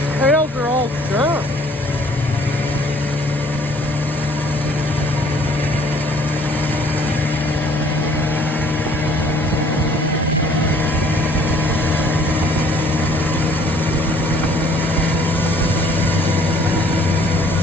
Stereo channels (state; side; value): normal; both; correlation 0.58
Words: Trails are all dirt.